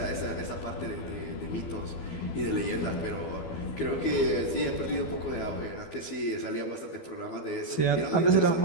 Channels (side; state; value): right; late; 12 ms